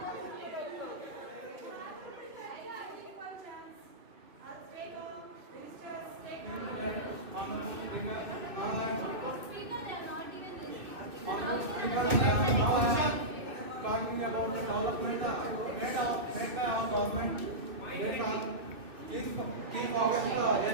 development made by our government. They are key focus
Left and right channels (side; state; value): left; late; 2.4 ms